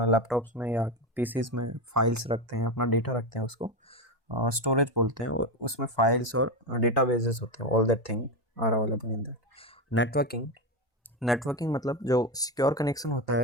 लैपटॉप्स में या पीसीज में फाइल्स रखते हैं, अपना डेटा रखते हैं, उसको स्टोरेज बोलते हैं. उसमें फाइल्स और डेटाबेसेस होते हैं. All that thing are available in that. Networking मतलब जो सिक्योर कनेक्शन होता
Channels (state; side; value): normal; both; correlation 0.14